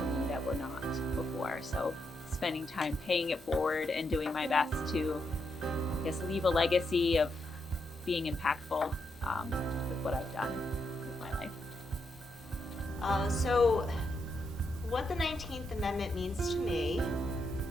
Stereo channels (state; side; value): normal; both; correlation 0.81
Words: that were not before. So spending time paying it forward and doing my best to, I guess, leave a legacy of being impactful with what I've done with my life. So what the 19th Amendment means to me